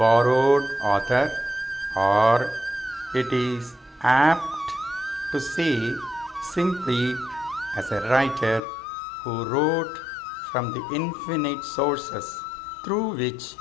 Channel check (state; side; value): drops out; right; at 8.6 s